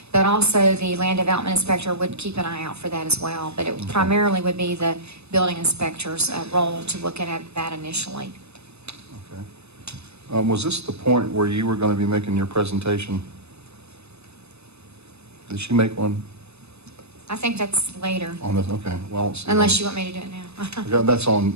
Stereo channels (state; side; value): late; left; 0.80 ms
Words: but also the land development inspector would keep an eye out for that as well. But it primarily would be the building inspector's role to look at that initially. Was this the point where you were going to be making your presentation? Did she make one I think that's later, on this? Okay, well, let's see. unless you want me to do it now. Yeah, that's